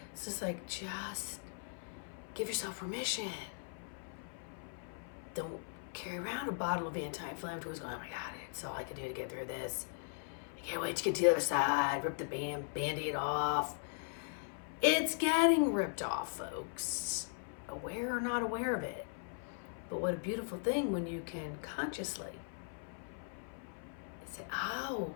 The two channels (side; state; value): right; silent; 52 dB below the other